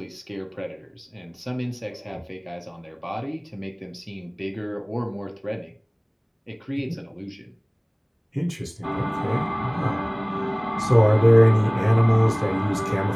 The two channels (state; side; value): identical; both; correlation 1.00